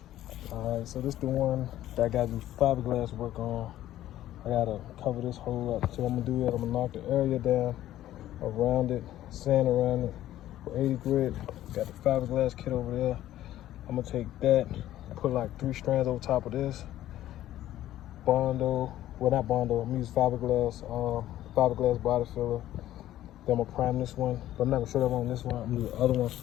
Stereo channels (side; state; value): right; quieter; 13.4 dB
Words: All right, so this is the one that I gotta do fiberglass work on. I gotta cover this hole up. So I'm gonna do that. I'm gonna knock the area down around it, sand around it with 80 grit. Got the fiberglass kit over there. I'm gonna take that, put like 3 strands over top of this. Bondo, well not Bondo, I'm gonna use fiberglass body filler. Then I'm gonna prime this one, but I'm not gonna show that one on this one. I'm gonna do the other one